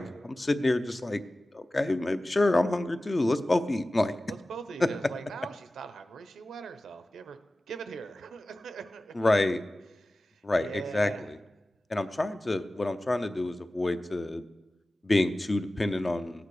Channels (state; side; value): normal; both; correlation 0.96